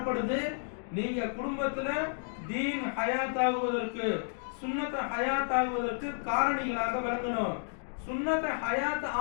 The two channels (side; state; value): right; silent; digital silence